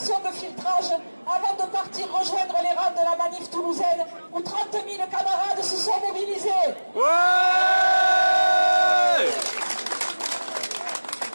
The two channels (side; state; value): both; inverted; correlation -1.00